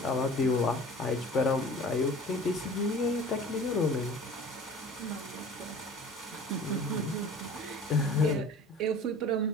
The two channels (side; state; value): both; normal; correlation 0.44